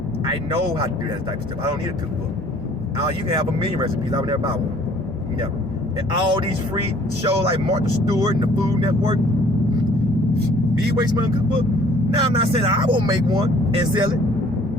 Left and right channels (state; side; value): normal; both; correlation 0.56